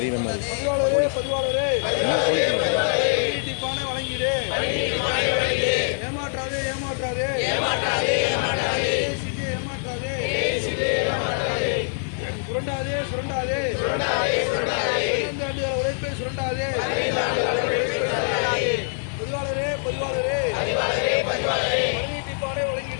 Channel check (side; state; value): right; silent; digital silence